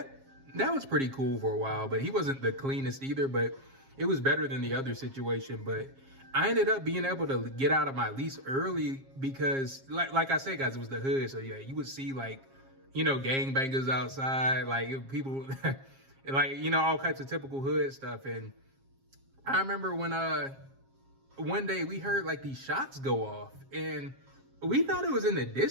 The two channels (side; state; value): left; late; 7.4 ms